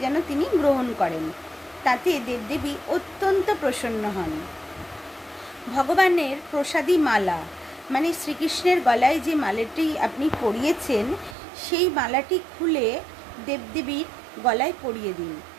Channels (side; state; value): left; drops out; at 11.4 s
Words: যেন তিনি গ্রহণ করেন। তাতে দেবদেবী অত্যন্ত প্রসন্ন হন। ভগবানের প্রসাদী মালা, মানে শ্রীকৃষ্ণের গলায় যে মালাটি আপনি পরিয়েছেন, সেই মালাটি খুলে দেবদেবীর গলায় পরিয়ে দিন।